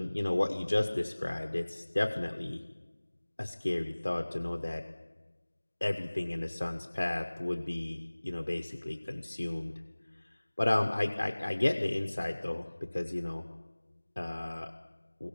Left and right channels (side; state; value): both; inverted; correlation -1.00